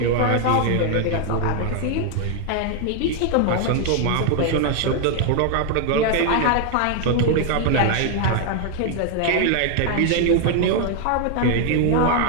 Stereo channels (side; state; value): both; different; correlation 0.00